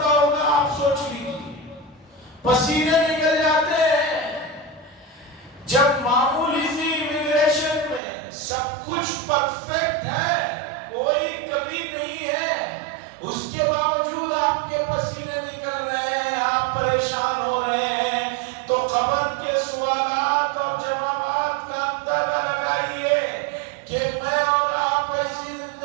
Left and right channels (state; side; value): drops out; left; at 8.0 s